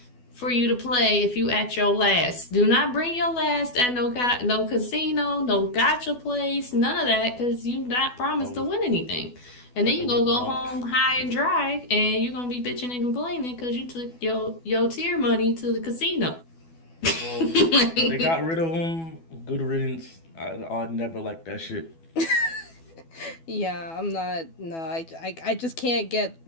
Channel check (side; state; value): right; late; 12 ms